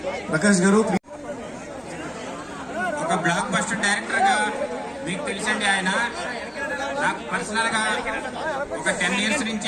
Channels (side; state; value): both; identical; correlation 1.00